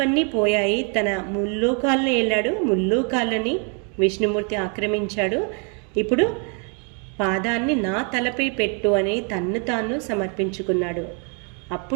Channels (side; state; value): left; quieter; 38.5 dB